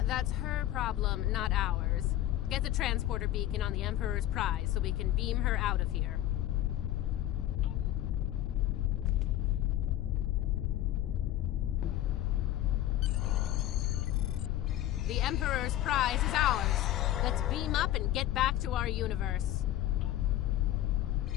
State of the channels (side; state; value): right; quieter; 13.4 dB